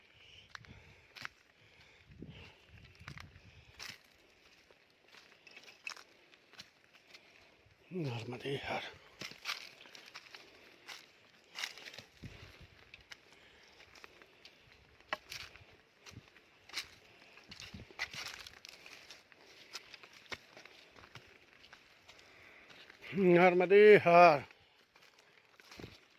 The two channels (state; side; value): identical; both; correlation 1.00